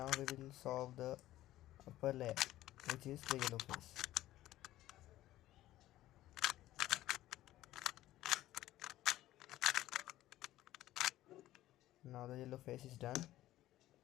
we will solve the upper layer, which is the yellow face. Now the yellow face is done.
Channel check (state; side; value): quieter; right; 14.9 dB